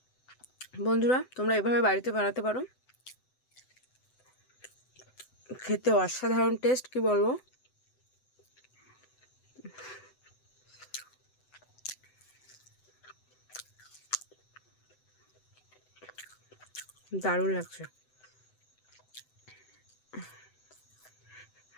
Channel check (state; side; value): late; right; 7.9 ms